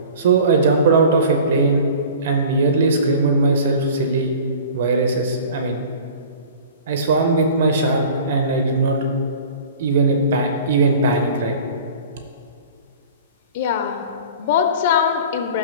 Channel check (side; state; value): both; inverted; correlation -0.43